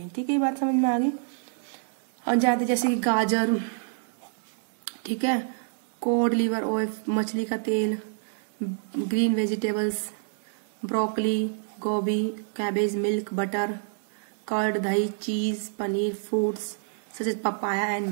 ठीक है, ये बात समझ में आ गई। और ज्यादा जैसे कि गाजर, ठीक है, कोड लिवर ऑयल, मछली का तेल, ग्रीन वेजिटेबल्स, ब्रोकली, गोभी, कैबेज, मिल्क, बटर, कर्ड, दही, cheese, paneer, fruits such as papaya and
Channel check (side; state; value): left; silent; digital silence